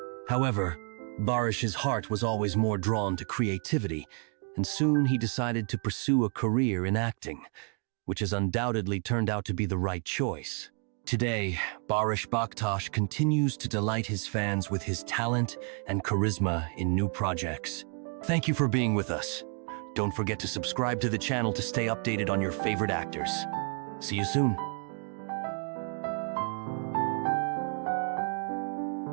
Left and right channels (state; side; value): quieter; left; 39.7 dB